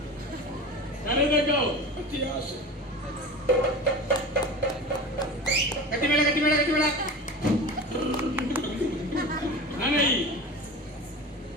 ಕರೆದಗೋ ಅತಿ ಆಸೆ ಕಟ್ಟಿಬೇಡ ನನೈ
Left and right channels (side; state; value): both; normal; correlation 0.32